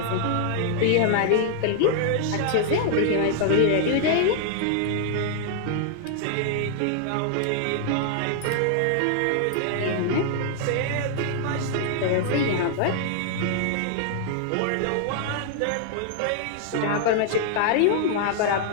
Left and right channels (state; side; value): different; both; correlation 0.00